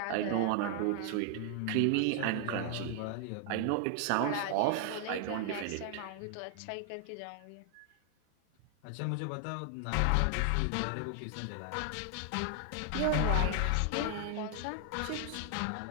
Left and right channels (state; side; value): different; both; correlation 0.00